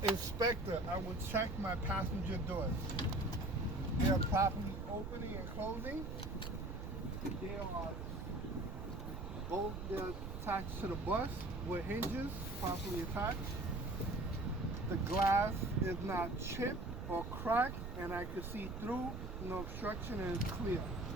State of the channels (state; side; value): noise; right; rumble, 6 dB below the sound